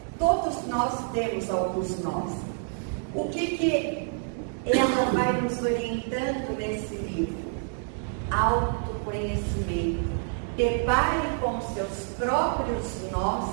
Todos nós temos alguns nós. O que ela vai nos orientando nesse livro? Autoconhecimento. Depare com seus próprios nós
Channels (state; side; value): silent; left; 58 dB below the other